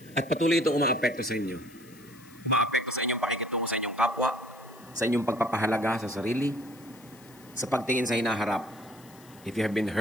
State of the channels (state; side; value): noise; left; hiss, 24 dB below the sound